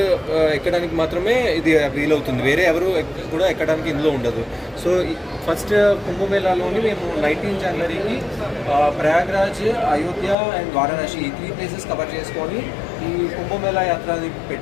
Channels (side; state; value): right; drops out; at 10.4 s